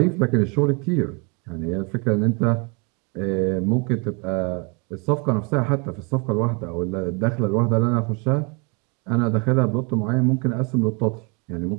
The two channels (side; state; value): left; quieter; 31.3 dB